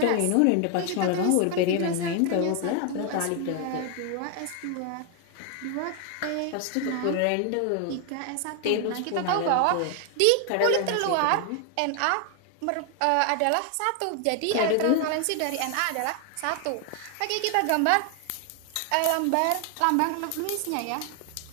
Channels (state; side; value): different; both; correlation 0.01